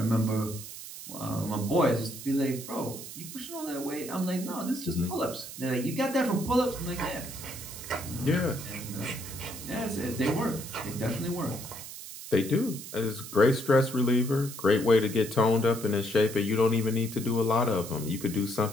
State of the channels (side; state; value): right; noise; hiss, 11 dB below the sound